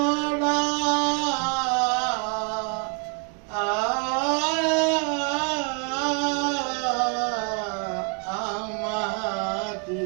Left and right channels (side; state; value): left; quieter; 36.4 dB